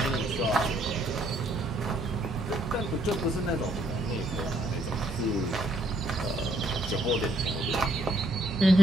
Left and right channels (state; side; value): normal; both; correlation 0.68